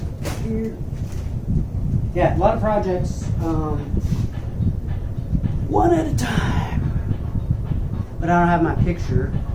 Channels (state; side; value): identical; both; correlation 1.00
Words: back here. Yeah, a lot of projects, one at a time. But I don't have my picture,